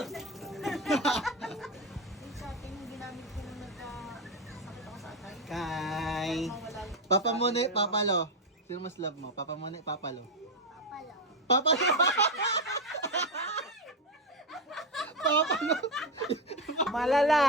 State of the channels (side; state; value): both; normal; correlation 0.11